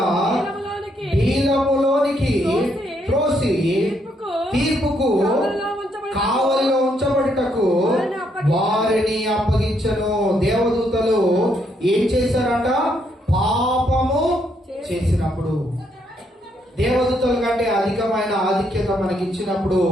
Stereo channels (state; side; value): normal; both; correlation 0.74